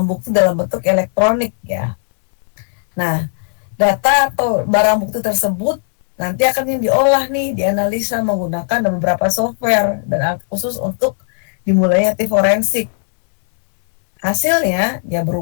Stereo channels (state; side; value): silent; right; digital silence